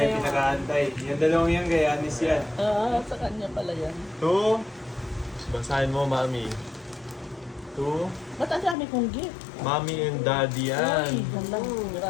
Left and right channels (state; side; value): drops out; right; at 8.8 s